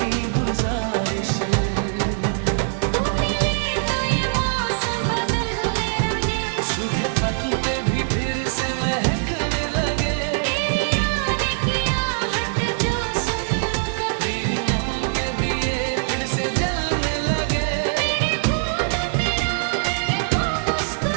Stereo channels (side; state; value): left; silent; digital silence